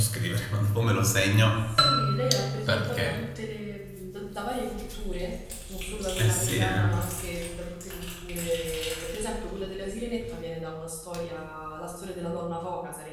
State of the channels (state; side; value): identical; both; correlation 1.00